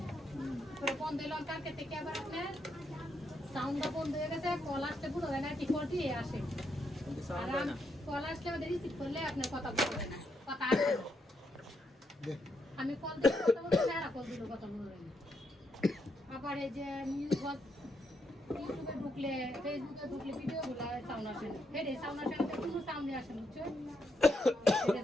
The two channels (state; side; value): normal; both; correlation 0.79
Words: পরে বন্ধ হইলাম কালকে থেকে আবার আপনার সাউন্ডটা বন্ধ হয়ে গেছে কল আসতে পুরো হয় না কি করতে আসে কিন্তু আর সাউন্ড হয় না কল আসলে আমাদের রিসিভ করলে আপনার কথা বলবেন না কথা আসবে না আমি কল দিয়ে কথা বলতে না কল দিলে কথা বলবেন না আবার এই যে নিউজ ইউটিউবে ঢুকলে ফেসবুকে ঢুকলে ভিডিও গুলা সাউন্ড আসে না হেডে সাউন্ড আসে না কোনো সাউন্ডই আসে না বুঝছো হেডে